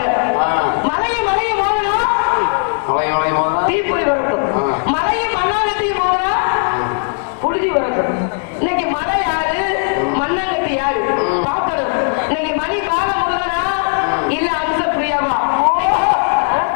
மலையும் மலையும் மோதனா தீப்பொறி வரட்டும். மலையும் மண்ணாங்கட்டியும் மோதனா புழுதி வரட்டும். இன்னைக்கு மலை யாரு, மண்ணாங்கட்டி யாரு பார்க்கணும். இன்னைக்கு மணி பாலமுருகனா இல்ல அம்ச பிரியாவா?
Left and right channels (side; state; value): right; silent; 60 dB below the other